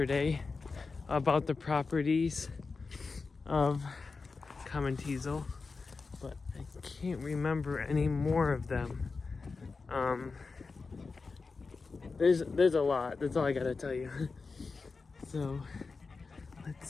about the properties of common teasel, but I can't remember any more of them. There's a lot. That's all I gotta tell you. So let's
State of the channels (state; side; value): quieter; right; 4.3 dB